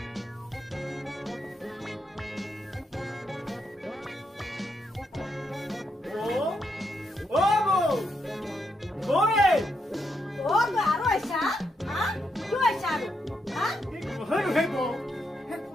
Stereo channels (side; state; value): both; normal; correlation 0.80